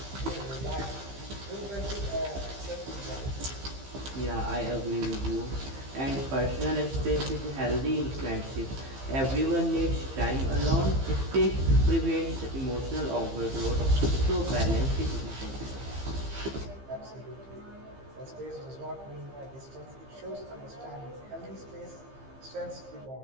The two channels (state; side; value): late; left; 15 ms